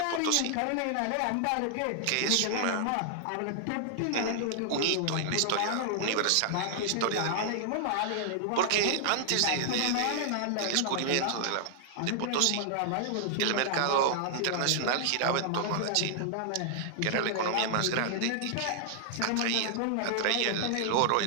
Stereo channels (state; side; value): different; both; correlation 0.00